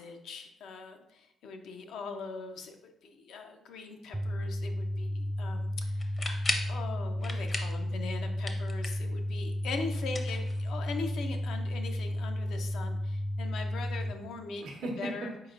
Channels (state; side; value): normal; both; correlation 0.91